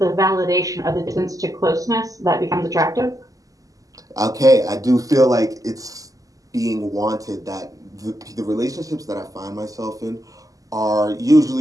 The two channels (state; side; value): late; left; 0.17 ms